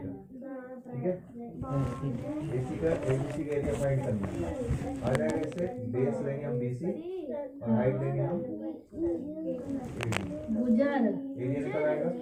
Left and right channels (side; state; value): both; identical; correlation 1.00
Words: ठीक है। AC का ABC का एरिया फाइंड करना है, आ जाएगा इससे बेस लेंगे हम BC और हाइट लेंगे हम गुजर एरिया निकल आएगा।